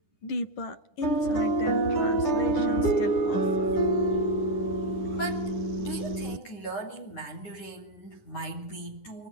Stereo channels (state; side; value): late; right; 10 ms